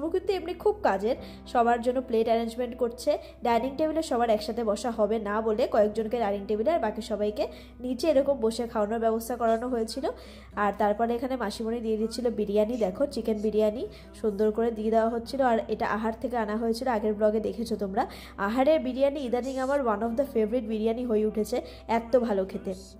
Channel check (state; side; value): identical; both; correlation 1.00